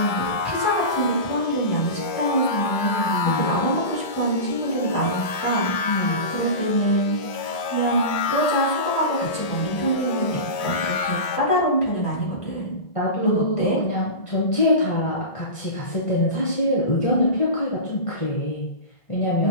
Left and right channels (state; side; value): late; right; 2.2 ms